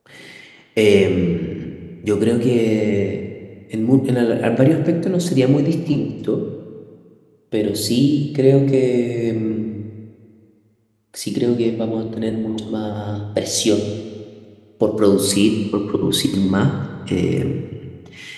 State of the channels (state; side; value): identical; both; correlation 1.00